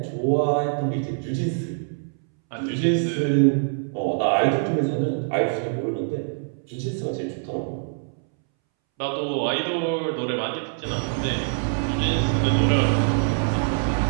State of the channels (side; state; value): left; silent; 62 dB below the other